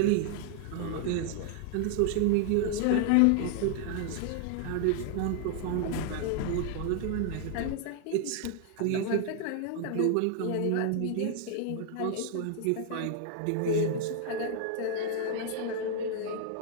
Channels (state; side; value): different; both; correlation 0.00